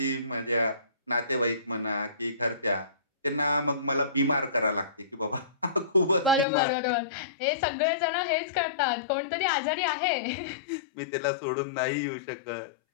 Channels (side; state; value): right; drops out; at 6.5 s